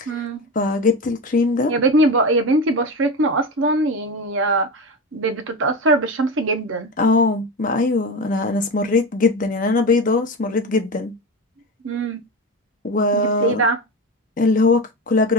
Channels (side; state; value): both; normal; correlation 0.23